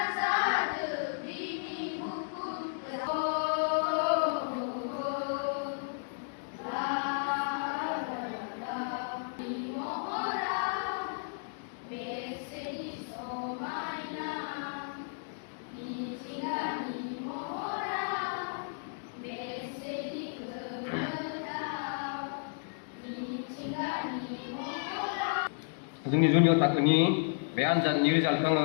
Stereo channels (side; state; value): right; silent; digital silence